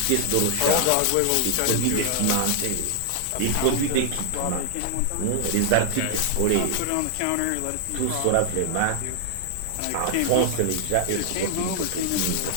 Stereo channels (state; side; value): different; both; correlation 0.00